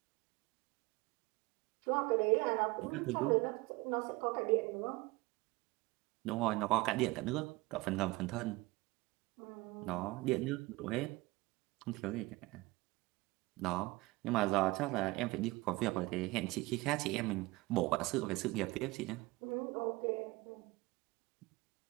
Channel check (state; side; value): quieter; left; 22.1 dB